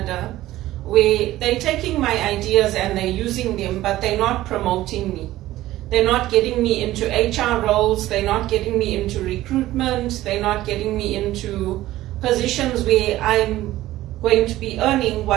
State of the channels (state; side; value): quieter; left; 15.5 dB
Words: where they're taking my ideas and they're using them, but they're not promoting me. They're not getting me into HR roles, they're not getting me into recruitment, they're not getting me into positions where I'm going to be earning